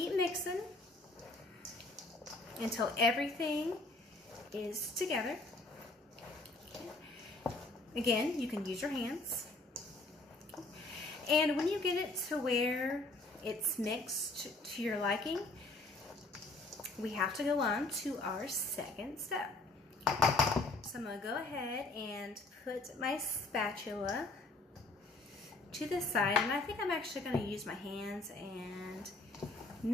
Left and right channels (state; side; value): quieter; right; 3.1 dB